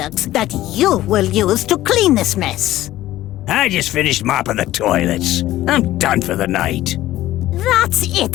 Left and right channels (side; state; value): right; quieter; 15.0 dB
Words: that you will use to clean this mess. I just finished mopping the toilets. I'm done for the night. That's